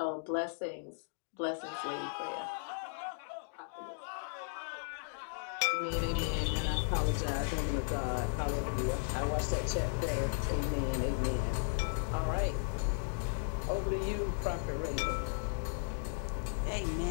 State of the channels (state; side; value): silent; right; digital silence